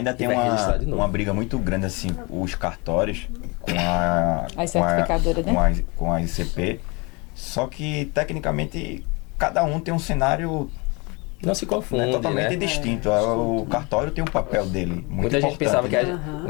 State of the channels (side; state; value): right; quieter; 28.2 dB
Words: tem e vai registrar de novo. Uma briga muito grande, assim, os cartórios com a certificadora, né? Com a ICP. Só que, tecnicamente, cada um tem um cenário... Não se confunde, totalmente né? distinto. O cartório tem um papel dele muito muita gente pensava que